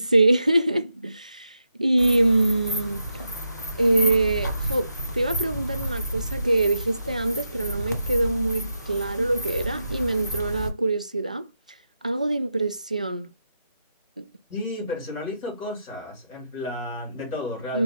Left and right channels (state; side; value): inverted; both; correlation -0.85